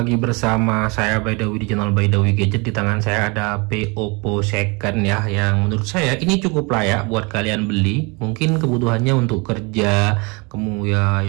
bersama saya Baidawi di channel Baidawi Gadget. Di tangan saya ada HP Oppo second ya, yang menurut saya ini cukup layak buat kalian beli. Mungkin kebutuhannya untuk kerja, kemudian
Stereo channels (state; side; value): quieter; left; 29.2 dB